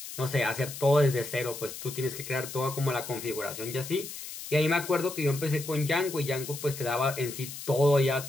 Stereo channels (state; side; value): noise; left; hiss, 10 dB below the sound